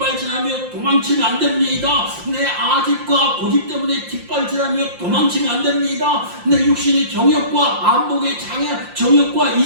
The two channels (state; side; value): late; left; 5.7 ms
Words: 도망치면 안 됩니다. 내 아집과 고집 때문에 뒷발질하며 도망치면 안 됩니다. 내 육신의 정욕과 안목의 장애, 정욕과